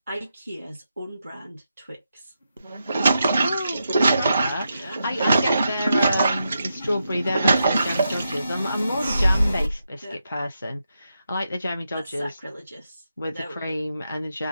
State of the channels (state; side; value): inverted; both; correlation -0.86